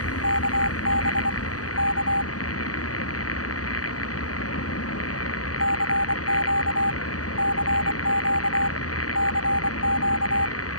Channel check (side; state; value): right; late; 0.67 ms